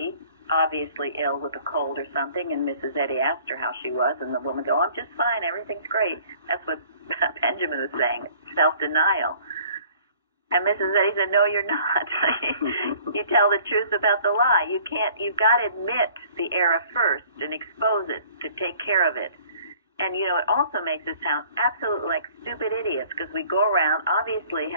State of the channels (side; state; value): both; inverted; correlation -0.54